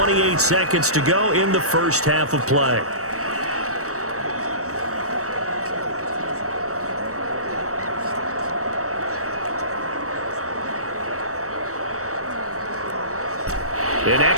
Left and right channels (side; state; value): left; late; 0.65 ms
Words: seconds to go in the first half of play. An